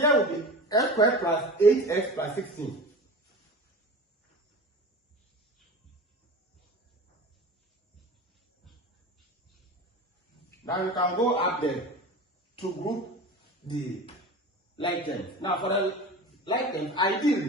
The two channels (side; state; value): both; normal; correlation 0.34